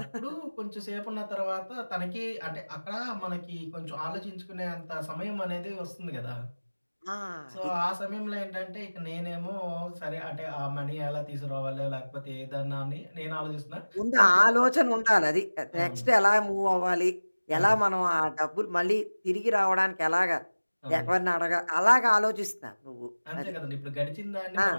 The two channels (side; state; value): both; inverted; correlation -1.00